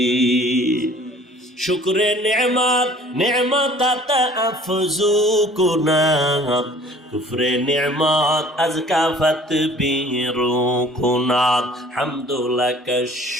শুকরে নেমাত নেমাত আফজু কুনাত, কুফরে নেমাত আজকাফত বিরু কুনাত, হামদুলাকা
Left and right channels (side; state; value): both; normal; correlation 0.51